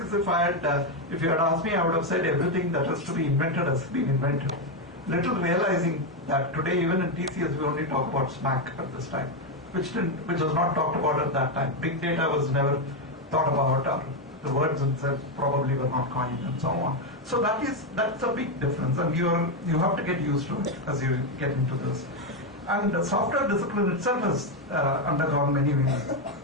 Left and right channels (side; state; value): both; normal; correlation 0.05